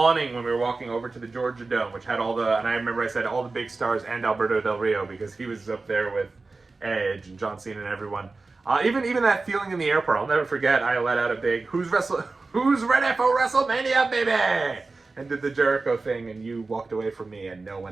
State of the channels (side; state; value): left; quieter; 3.7 dB